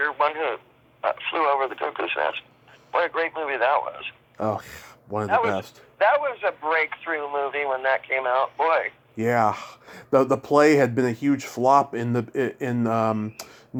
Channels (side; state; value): both; identical; correlation 1.00